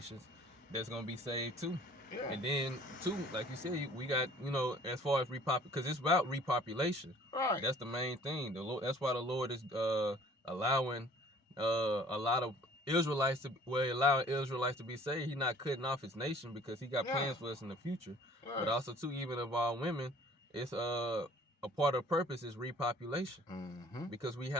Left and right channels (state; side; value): normal; both; correlation 0.53